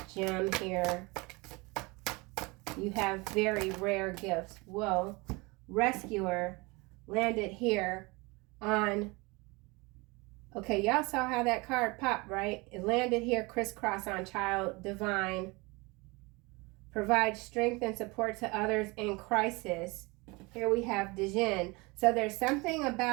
gem here? You have very rare gifts. Whoa. Rescuer landed here on... Okay, y'all saw how that card popped, right? It landed here crisscross on child divine. Provide strength and support to others in crisis. Here we have Dijin. So there's something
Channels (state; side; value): quieter; left; 25.7 dB